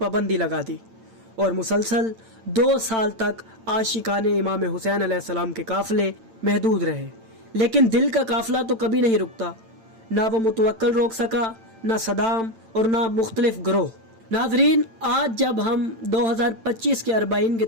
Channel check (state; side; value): late; left; 8.9 ms